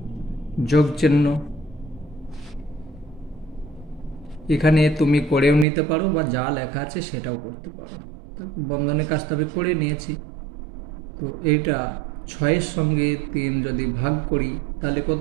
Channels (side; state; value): left; drops out; at 5.7 s